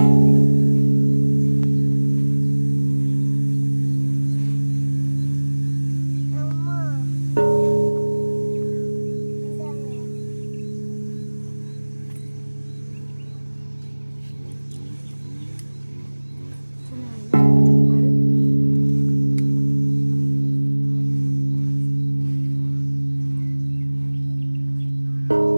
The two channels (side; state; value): both; inverted; correlation -1.00